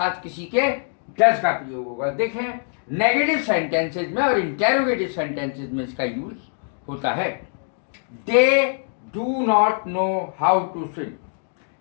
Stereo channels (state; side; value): silent; right; digital silence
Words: किसी के डज का प्रयोग होगा। देखें, नेगेटिव सेंटेंसेज में और इंटेरोगेटिव सेंटेंसेज में इसका यूज होता है। They do not know how to swim,